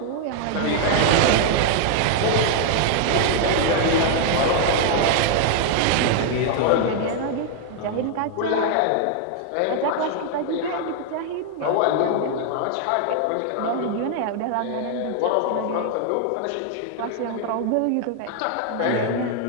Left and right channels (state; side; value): different; both; correlation 0.00